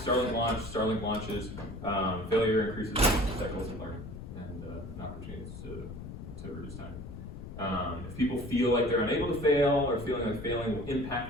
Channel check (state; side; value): noise; left; rumble, 10 dB below the sound